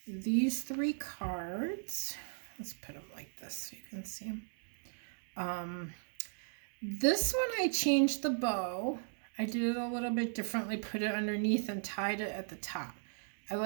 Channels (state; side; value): silent; left; digital silence